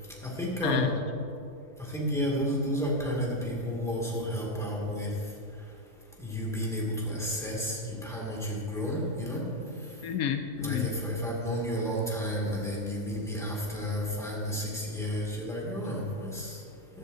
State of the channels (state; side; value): normal; both; correlation 0.10